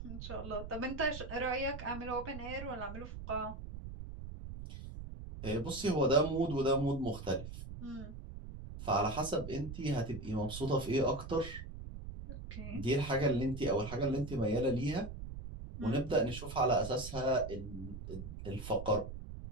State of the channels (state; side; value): noise; right; rumble, 10 dB below the sound